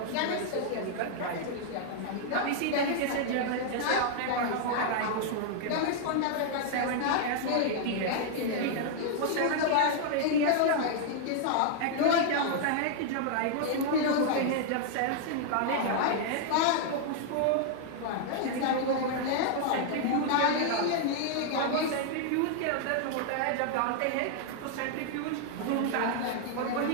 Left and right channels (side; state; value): both; different; correlation 0.00